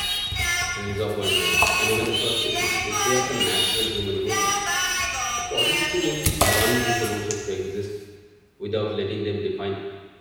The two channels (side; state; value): both; identical; correlation 1.00